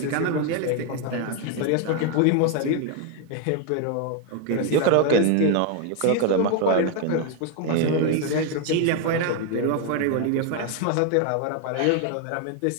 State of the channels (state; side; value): different; both; correlation 0.01